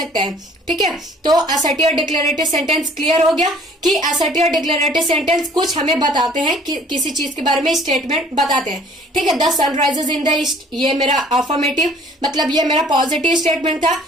है। ठीक है, तो असर्टिव और डिक्लेरेटिव सेंटेंस क्लियर हो गया कि असर्टिव और डिक्लेरेटिव सेंटेंस कुछ हमें बताते हैं कि किसी चीज के बारे में स्टेटमेंट बताते हैं। ठीक है, the sun rises in the east, ये मेरा अफर्मेटिव, मतलब ये मेरा पॉजिटिव स्टेटमेंट था।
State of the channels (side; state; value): both; normal; correlation 0.55